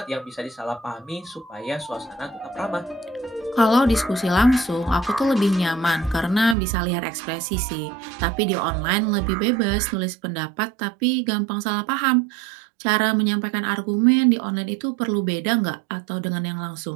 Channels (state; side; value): drops out; left; at 6.6 s